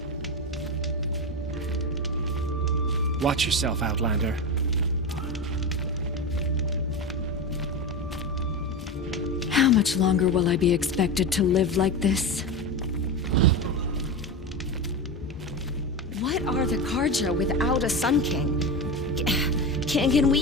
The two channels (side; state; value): both; normal; correlation 0.20